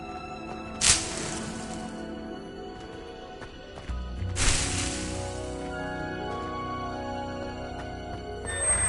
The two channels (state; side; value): identical; both; correlation 1.00